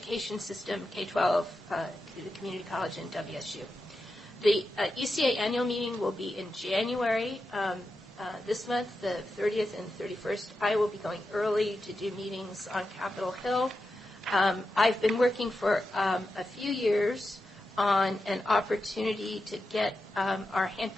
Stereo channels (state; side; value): normal; both; correlation 0.89